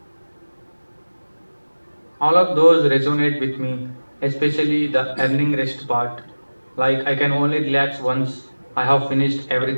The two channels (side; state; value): both; inverted; correlation -1.00